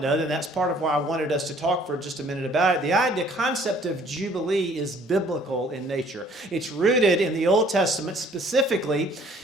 then that's part of why I wanted us to talk for just a minute about it. The concept of Jubilee is biblical in nature. It's rooted in the Old Testament, specifically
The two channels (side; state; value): both; normal; correlation 0.57